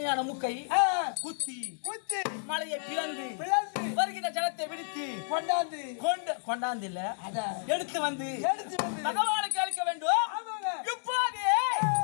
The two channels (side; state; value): right; silent; digital silence